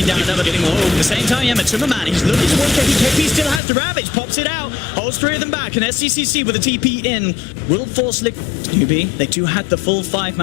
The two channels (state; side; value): drops out; right; at 3.6 s